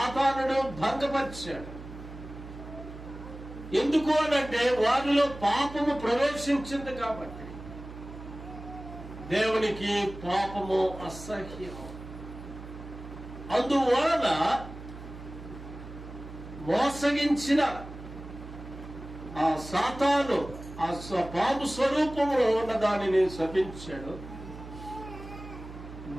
భంగపరిచాడు. ఎందుకు అనంటే వారిలో పాపము ప్రవేశించింది కాబట్టి. దేవునికి పాపము అసహ్యం. అందువలన మోసగించిన ఆ సాతాను ఆ పాము స్వరూపంలో ఉన్న దానిని శపించాడు.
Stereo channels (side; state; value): right; noise; hum, 13 dB below the sound